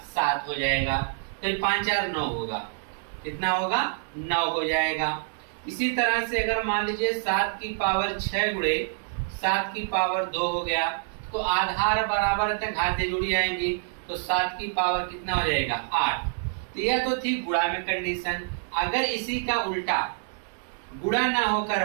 7 हो जाएगा। फिर 5 4 9 होगा, कितना होगा? 9 हो जाएगा। इसी तरह से अगर मान लीजिए 7 की पावर 6 गुणे 7 की पावर 2 हो गया, तो आधार बराबर तक घातें जुड़ जाएंगी, तो 7 की पावर कितना हो जाएगा? 8। तो यह तो थी गुणा में कंडीशन। अगर इसी का उल्टा गुणा ना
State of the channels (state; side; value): silent; left; digital silence